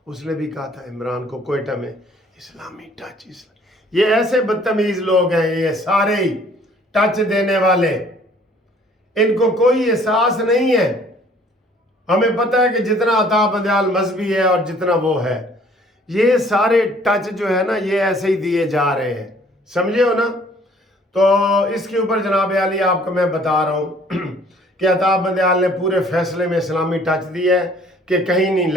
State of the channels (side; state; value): both; normal; correlation 0.57